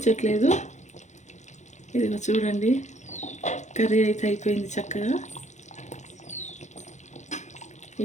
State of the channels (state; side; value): late; right; 0.34 ms